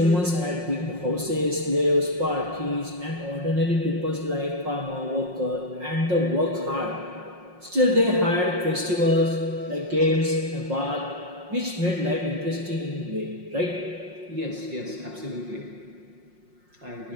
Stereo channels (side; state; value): left; late; 5.6 ms